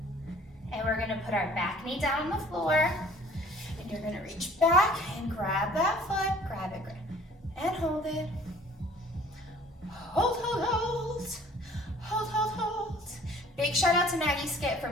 And we're gonna put our back knee down on the floor. And you're gonna reach back and grab that foot. Grab it, and hold it. Hold, hold, hold. Hold, hold, hold. Big shout out to Maggie Skip for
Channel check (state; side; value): normal; both; correlation 0.52